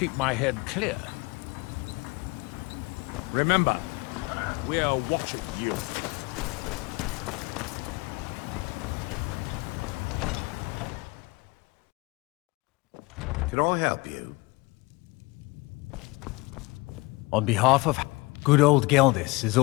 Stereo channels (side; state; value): right; quieter; 24.4 dB